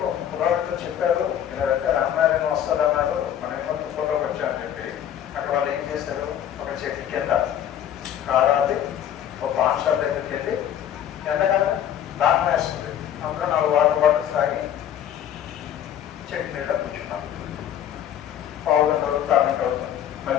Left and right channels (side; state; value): right; quieter; 10.2 dB